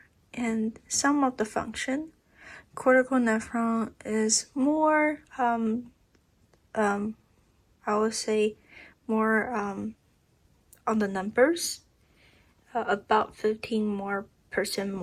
and some of the function. Cortical nephron is more, I would say, more on the numbers, about 15%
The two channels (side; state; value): both; identical; correlation 1.00